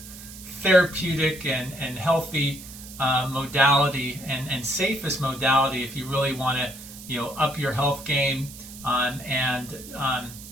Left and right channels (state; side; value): noise; right; hiss, 15 dB below the sound